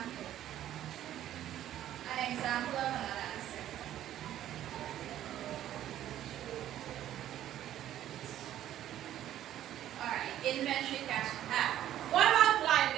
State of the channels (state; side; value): quieter; left; 12.1 dB